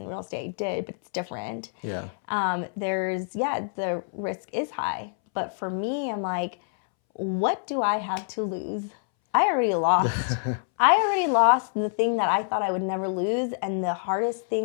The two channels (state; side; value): silent; right; 61 dB below the other